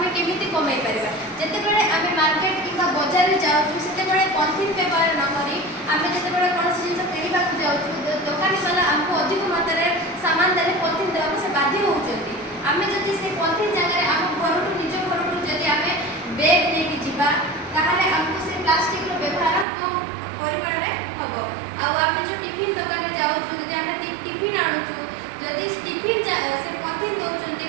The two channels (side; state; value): left; drops out; at 19.7 s